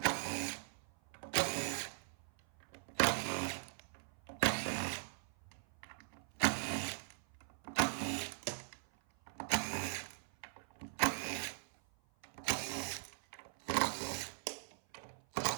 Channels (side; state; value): left; silent; 51 dB below the other